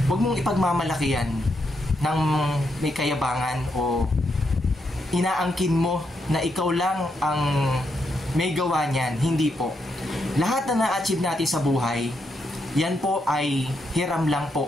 huwag mong ipagmamalaki yan ng may kayabangan o inaangkin mo na ikaw lang ang may gawa niyan. Hindi po. Lahat na na-achieve natin sa buhay, yan po ay hiram lang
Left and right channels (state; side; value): normal; both; correlation 0.80